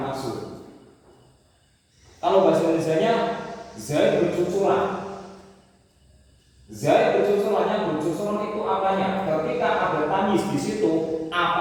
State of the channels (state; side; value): identical; both; correlation 1.00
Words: Kalau bahasa Indonesianya Zaid bercucuran. Zaid bercucurannya, bercucuran itu apanya? Ketika ada tamyiz di situ,